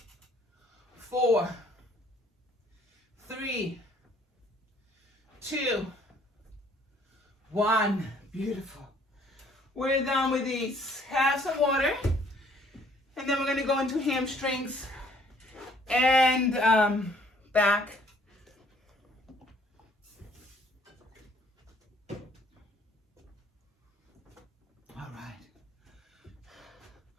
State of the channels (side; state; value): both; normal; correlation 0.61